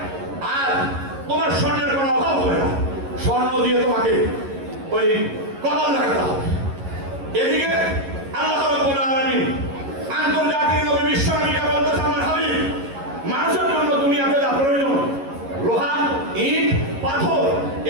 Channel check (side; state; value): left; late; 11 ms